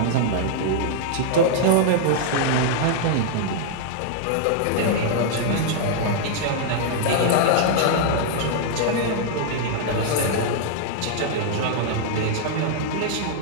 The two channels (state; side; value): different; both; correlation -0.01